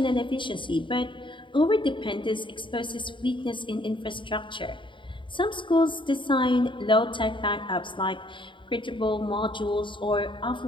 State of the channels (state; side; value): late; right; 0.24 ms